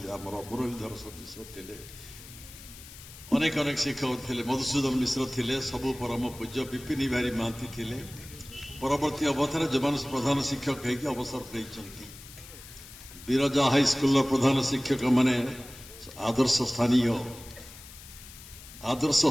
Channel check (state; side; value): noise; left; hiss, 17 dB below the sound